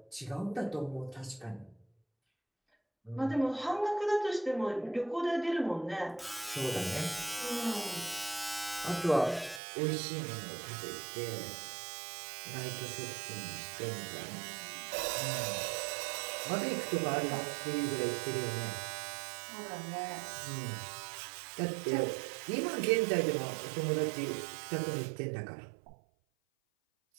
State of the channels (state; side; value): drops out; left; at 9.6 s